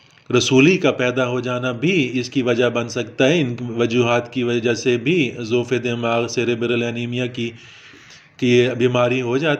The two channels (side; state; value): both; identical; correlation 1.00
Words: رسولی کا پیدا ہو جانا بھی اس کی وجہ بن سکتا ہے۔ ان وجوہات کی وجہ سے بھی ضعف دماغ سیریبرل اینیمیا کی بیماری ہو